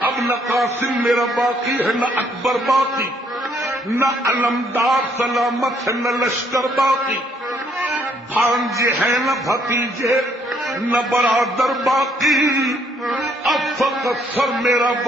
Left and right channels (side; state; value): both; normal; correlation 0.67